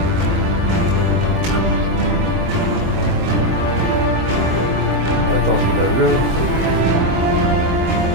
That does me no good.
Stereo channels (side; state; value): left; late; 23 ms